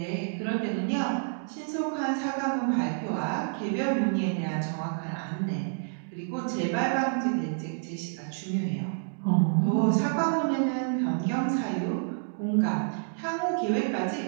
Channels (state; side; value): silent; left; digital silence